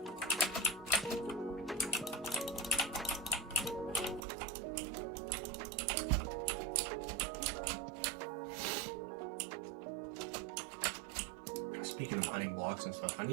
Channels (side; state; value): left; drops out; at 4.2 s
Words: Speaking of mining blocks and stuff, I